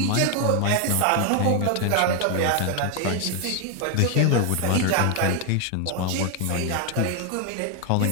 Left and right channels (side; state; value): both; different; correlation 0.01